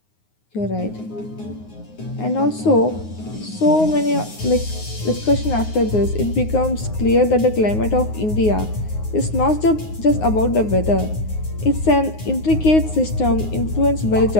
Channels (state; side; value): late; right; 9.6 ms